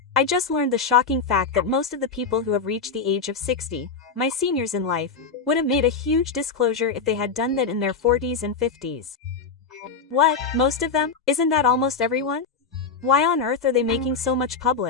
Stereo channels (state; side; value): quieter; right; 5.0 dB